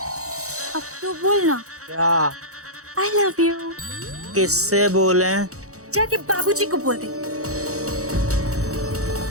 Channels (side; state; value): left; late; 0.65 ms